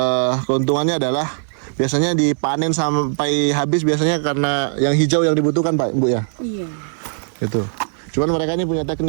keuntungannya adalah biasanya dipanen sampai habis biasanya karena yang hijau yang dibutuhkan Pak Bu ya. Iya. Itu. Cuman mereka ini punya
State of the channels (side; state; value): left; silent; digital silence